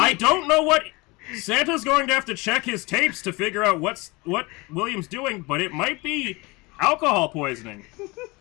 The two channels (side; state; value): right; quieter; 24.7 dB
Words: don't know what Santa's going to have to check his tapes to figure out what William's doing, but it might be alcohol poisoning.